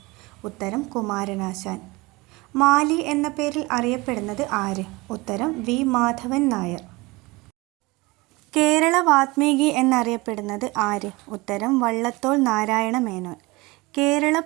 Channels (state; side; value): quieter; left; 23.2 dB